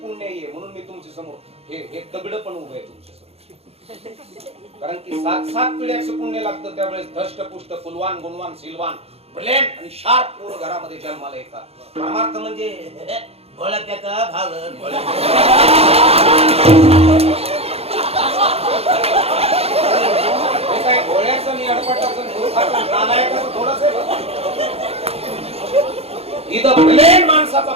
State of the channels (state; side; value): late; left; 0.29 ms